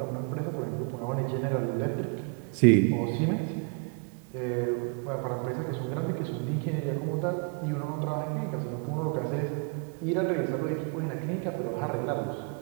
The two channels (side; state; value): left; quieter; 37.2 dB